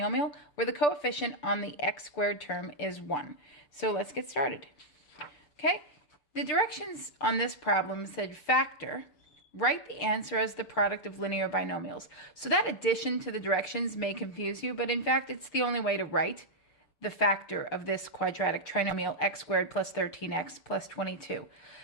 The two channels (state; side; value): late; right; 6.6 ms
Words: where the coefficient on the x squared term is 1. So let's get started. Okay, the directions on this problem said factor, write the answer as the product of linear binomials. So that addition to the directions may confuse you, but in fact it's the only way to write the factor of this quadratic trinomial x squared plus 13x plus 22.